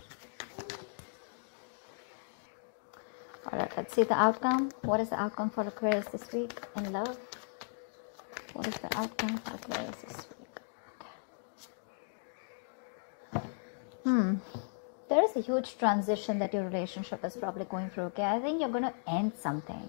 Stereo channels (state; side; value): silent; right; digital silence